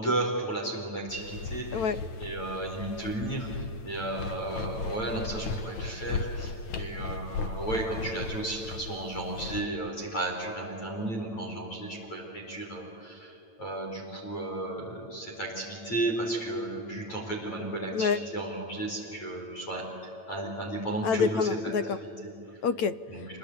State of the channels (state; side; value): late; right; 9.0 ms